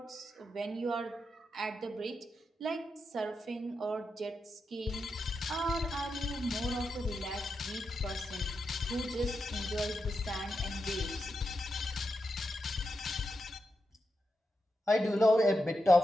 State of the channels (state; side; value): normal; both; correlation 0.87